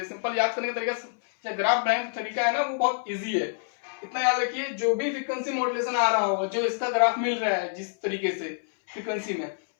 सिंपल याद करने का तरीका, ग्राफ बनाने का तरीका है ना, वो बहुत इजी है। इतना याद रखिए, जो भी फ्रीक्वेंसी मॉड्यूलेशन आ रहा होगा, जो इसका ग्राफ मिल रहा है जिस तरीके से फ्रीक्वेंसी में,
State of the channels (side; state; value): right; silent; 60 dB below the other